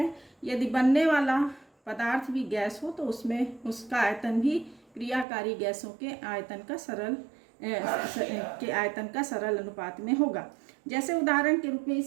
यदि बनने वाला पदार्थ भी गैस हो तो उसमें उसका आयतन भी क्रियाकारी गैसों के आयतन का सरल अनुपात में होगा। जैसे उदाहरण के रूप में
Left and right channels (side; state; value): left; drops out; at 5.2 s